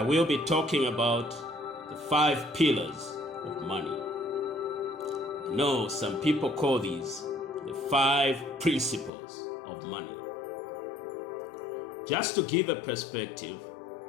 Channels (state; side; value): drops out; right; at 9.1 s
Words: will be talking about the 5 pillars of money. I know some people call these the 5 principles of money. Just to give a perspective,